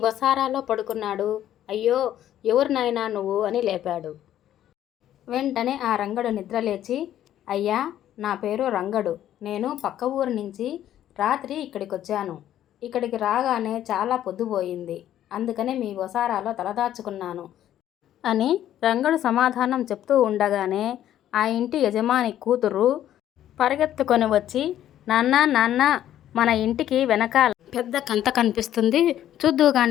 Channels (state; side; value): quieter; right; 11.7 dB